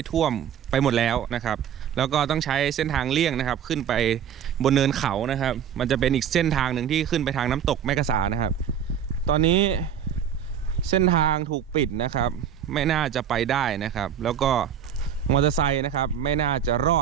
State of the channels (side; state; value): left; quieter; 8.7 dB